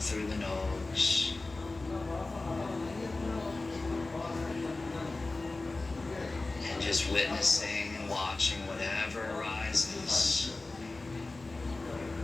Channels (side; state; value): right; quieter; 3.3 dB